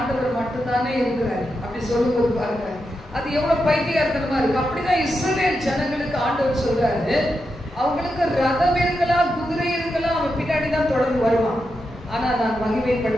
மட்டும்தானே இருக்கிறாரு அப்படி சொல்லும்போது பாருங்க, அது எவ்வளவு பைத்தியகாரத்தனமா இருக்கு. அப்படிதான் இஸ்ரவேல் ஜனங்களுக்கு ஆண்டவர் சொல்றாரு, அவங்களுக்கு ரதம் இருக்கலாம், குதிரை இருக்கலாம், அவன் பின்னாடிதான் தொடர்ந்து வருவான். ஆனா நான்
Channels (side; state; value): both; normal; correlation 0.86